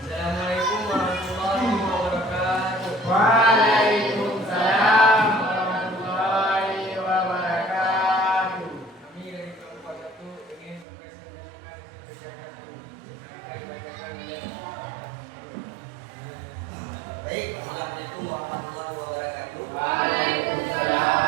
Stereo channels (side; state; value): left; drops out; at 10.9 s